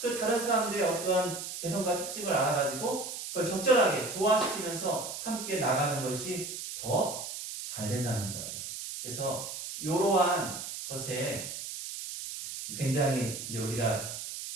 다른 사람들의 어떠한 개성과 특징을 알아가지고 그걸 적절하게 조화시키면서 함께 나가는 것이 더 잘 된다는 거예요. 그래서 이러한 것에 굉장히 이제 우리가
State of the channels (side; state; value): right; noise; hiss, 7 dB below the sound